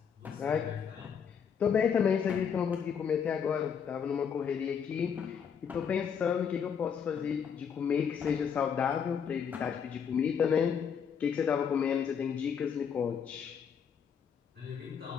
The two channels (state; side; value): quieter; right; 7.3 dB